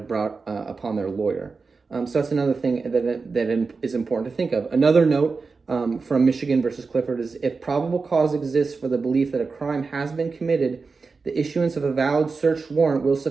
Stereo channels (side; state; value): left; quieter; 4.5 dB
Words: brought upon their lawyer. So that's another thing that is important to think of. Another note from Michigan versus Clifford is, if probable cause exists for the belief that a crime has been committed, the issuance of a valid search warrant will